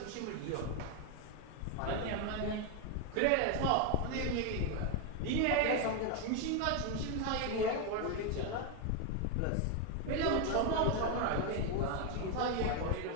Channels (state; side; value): different; both; correlation 0.01